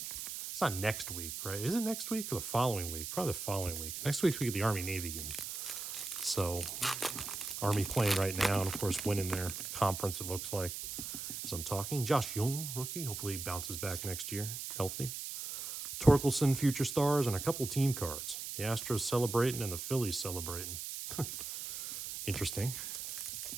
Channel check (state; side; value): noise; right; hiss, 6 dB below the sound